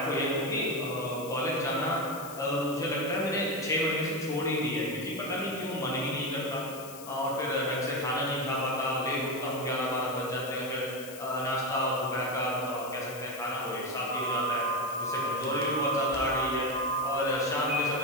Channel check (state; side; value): noise; left; hiss, 15 dB below the sound